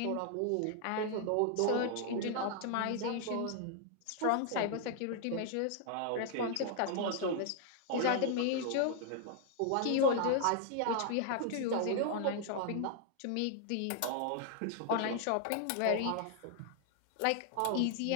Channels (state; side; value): different; both; correlation 0.00